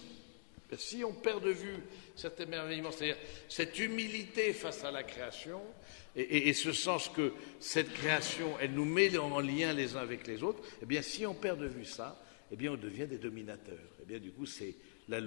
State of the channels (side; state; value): right; silent; digital silence